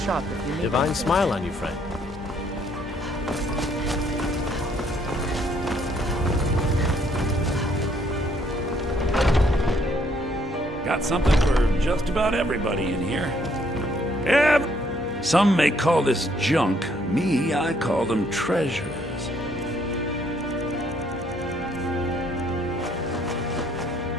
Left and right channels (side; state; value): both; normal; correlation 0.67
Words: shop if you need. Divine smile on you, friend. Got something for just about everybody in here. Some may call this junk. Me, I call them treasures.